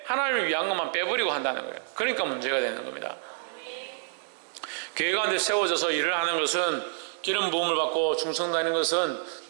하나님을 위한 것만 빼버리고 한다는 거예요. 그러니까 문제가 되는 겁니다. 교회 가운데 세워져서 일을 하는 것은, 기름 부음을 받고 충성다는 것은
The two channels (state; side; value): silent; left; digital silence